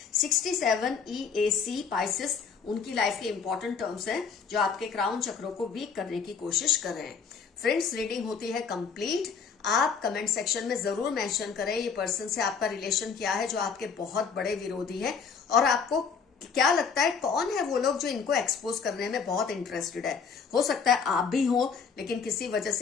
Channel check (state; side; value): quieter; right; 5.9 dB